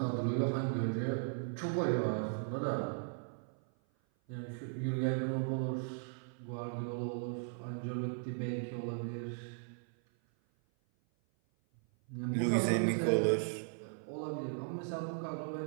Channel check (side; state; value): left; silent; 53 dB below the other